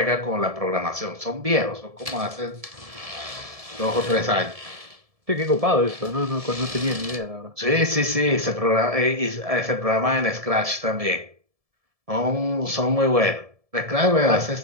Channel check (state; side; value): late; left; 1.7 ms